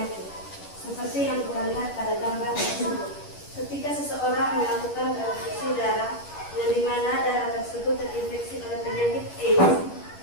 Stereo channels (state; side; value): late; right; 11 ms